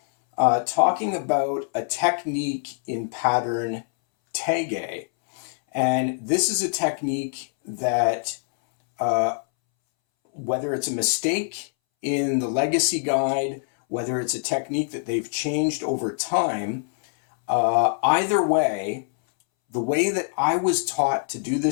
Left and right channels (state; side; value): silent; right; 63 dB below the other